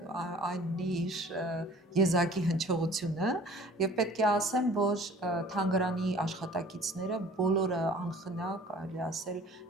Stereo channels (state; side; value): normal; both; correlation 0.49